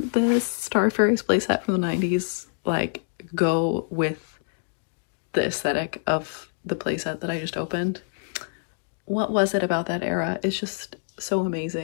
this Star Fairies playset from the 90s like go with the aesthetic of the playset that I just opened? What was it about that era? It's just, so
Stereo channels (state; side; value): silent; right; digital silence